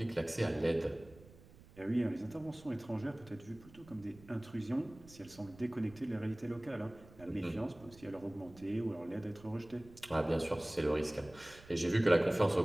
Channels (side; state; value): right; noise; rumble, 22 dB below the sound